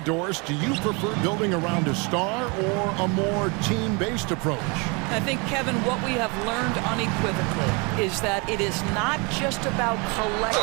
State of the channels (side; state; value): left; quieter; 30.2 dB